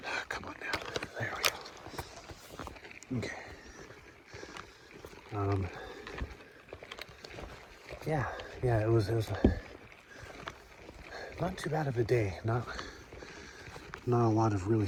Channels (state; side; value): identical; both; correlation 1.00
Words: Come on now. There we go. Okay. Yeah, it was not too bad of a day. Not a lot of really